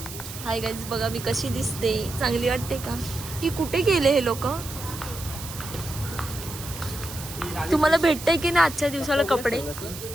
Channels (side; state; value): right; noise; hiss, 11 dB below the sound